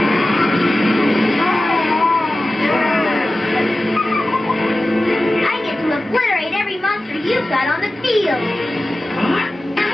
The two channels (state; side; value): normal; both; correlation 0.95